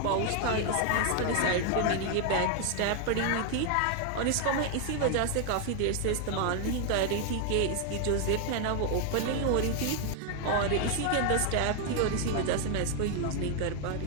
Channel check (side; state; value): both; different; correlation 0.00